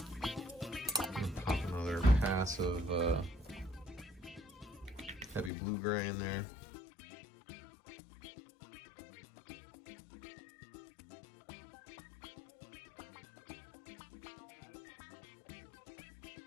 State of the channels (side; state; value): right; drops out; at 5.5 s